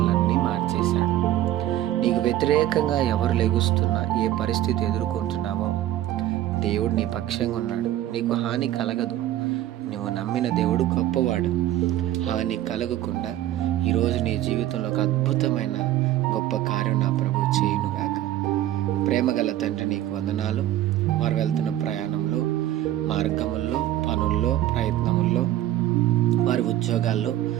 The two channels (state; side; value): quieter; left; 13.4 dB